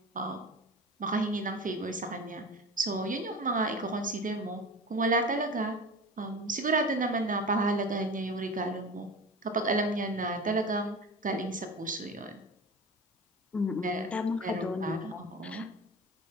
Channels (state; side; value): normal; both; correlation 0.32